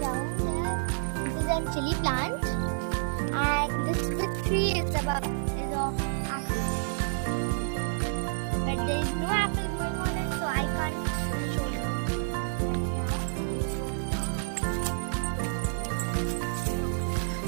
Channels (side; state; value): left; silent; 58 dB below the other